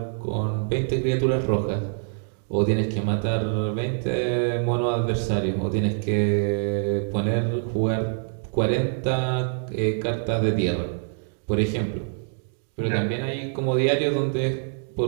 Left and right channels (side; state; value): left; silent; 61 dB below the other